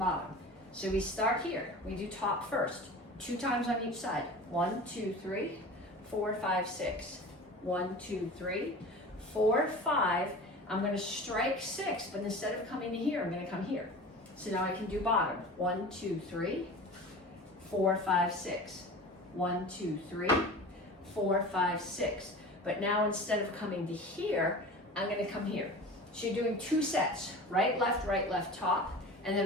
So we start here, we do top first, 2 times on each side. 1, 2, 3, 4, 5, 6. 1, 2, 3, 4, 5. I'm gonna strike 6, but instead of coming to here, I'm gonna come here. So now I can do bottom. 1, 2, 3, 4, 5, 6. 1, 2, 3, 4, 5, 6. But now instead of coming to here, I'm gonna come here. So you're doing 2 sets, right, left, top, and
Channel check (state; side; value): normal; both; correlation 0.36